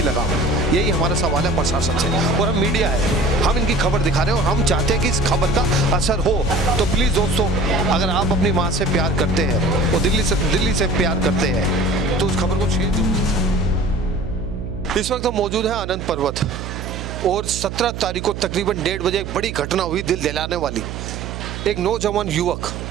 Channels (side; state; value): right; noise; hum, 8 dB below the sound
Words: लगाम? यही हमारा सवाल है प्रशासन से। और हम मीडिया है, हम इनकी खबर दिखा रहे हैं और हम चाहते हैं कि इस खबर का असर हो। तो प्लीज़ दोस्तों, अगर आप अपनी माँ से प्यार करते हैं और दिल्ली से प्यार करते हैं तो उस खबर को शेयर जरूर। इस वक्त हम मौजूद हैं आनंद पर्वत और 17 तारीख को तकरीबन 1:30 बजे एक बड़ी घटना हुई, दिल दिलाने वाली। एक नौजवान युवक